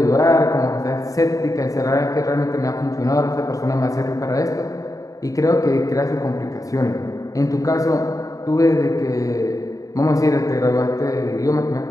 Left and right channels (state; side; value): late; right; 0.16 ms